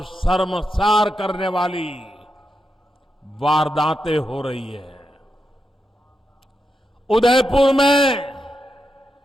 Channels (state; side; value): normal; both; correlation 0.86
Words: शर्मसार करने वाली वारदातें हो रही है। उदयपुर में